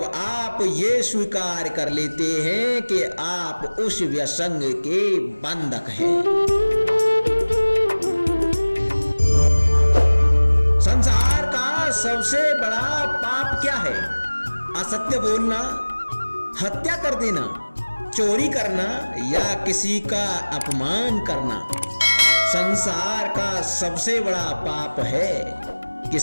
आप ये स्वीकार कर लेते हैं कि आप उस व्यसंग के बंधक हैं। संसार का सबसे बड़ा पाप क्या है? असत्य बोलना, हत्या कर देना, चोरी करना या किसी का अपमान करना। संसार का सबसे बड़ा पाप है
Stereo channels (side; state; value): both; inverted; correlation -1.00